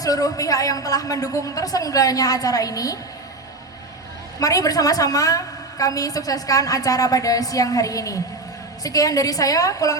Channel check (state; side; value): quieter; left; 3.1 dB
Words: pihak yang telah mendukung terselenggaranya acara ini. Mari bersama-sama kami sukseskan acara pada siang hari ini. Sekian dari saya,